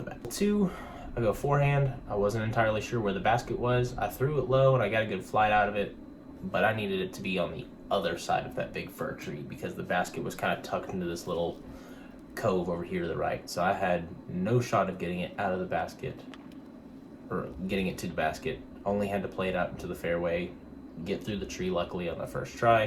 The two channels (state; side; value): identical; both; correlation 1.00